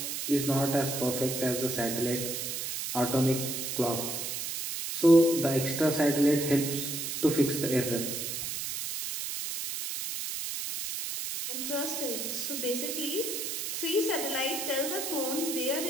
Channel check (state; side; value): noise; right; hiss, 4 dB below the sound